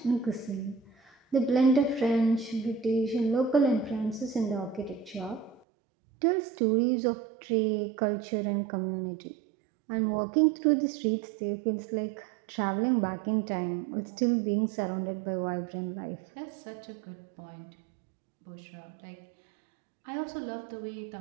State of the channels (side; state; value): left; drops out; at 5.6 s